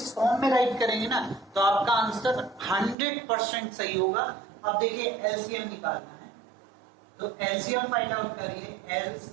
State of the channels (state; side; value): drops out; left; at 3.0 s